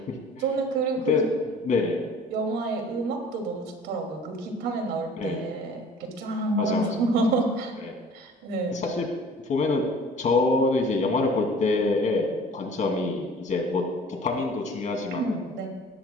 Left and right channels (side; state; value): both; normal; correlation 0.48